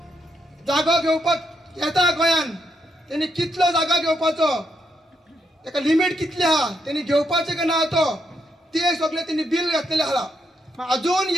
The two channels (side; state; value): both; normal; correlation 0.79